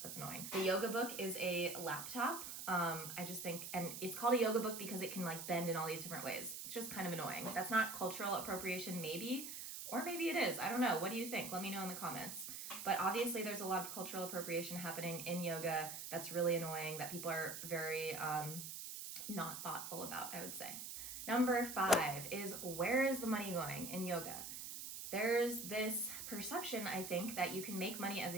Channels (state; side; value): noise; right; hiss, 7 dB below the sound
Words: That's annoying. The yoga book is a laptop. I just think, and it's called a yoga book because it can like bend in all these different ways. It's just kind of annoying. That's not cultural appropriation, maybe, or maybe it is. I don't know. What do you think? Let me know in the comments. But obviously there's a lot of cultural appropriation happening in yoga that's really annoying, that people are very not thoughtful about, I would say. Number 5 is, where is the money going in yoga? There's this perception, I think, that you can make money as